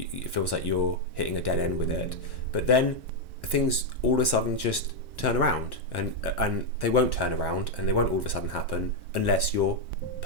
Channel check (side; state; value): right; late; 1.2 ms